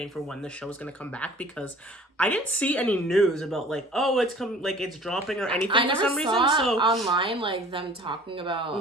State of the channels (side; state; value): both; normal; correlation 0.48